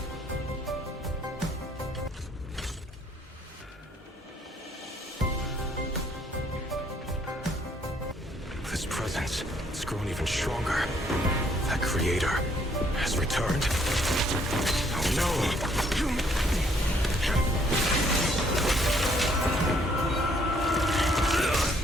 This presence, it's grown even stronger. That creator has returned. Oh no!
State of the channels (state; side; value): normal; both; correlation 0.66